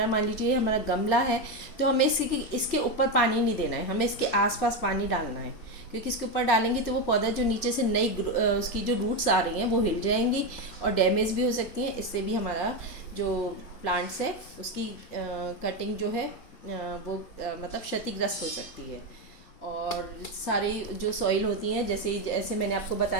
मान लीजिए हमारा गमला है, तो हमें इसके ऊपर पानी नहीं देना है, हमें इसके आसपास पानी डालना है, क्योंकि इसके ऊपर डालेंगे तो वो पौधा जो नीचे से नई उसकी जो रूट्स आ रही हैं वो हिल जाएंगी और डैमेज भी हो सकती हैं। इससे भी हमारा जो प्लांट्स है उसकी कटिंग जो है वो मतलब क्षतिग्रस्त हो सकती है। और सारी जो सॉइल होती हैं, जैसे जैसे मैंने आपको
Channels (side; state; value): right; late; 4.0 ms